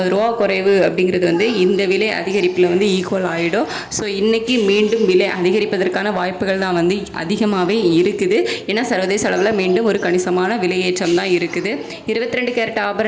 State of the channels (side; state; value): both; identical; correlation 1.00